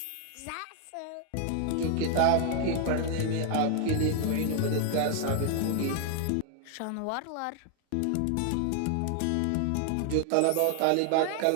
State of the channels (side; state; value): both; different; correlation 0.00